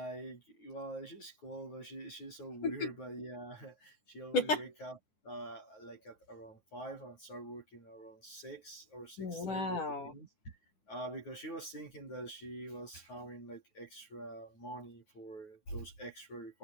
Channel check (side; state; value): right; late; 9.4 ms